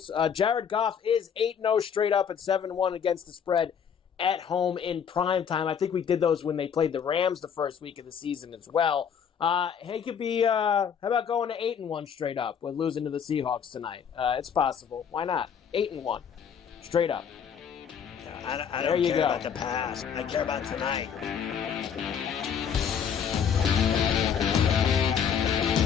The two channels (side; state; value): right; quieter; 7.5 dB